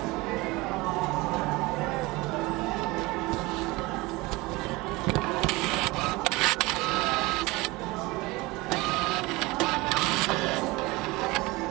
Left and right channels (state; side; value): quieter; left; 22.4 dB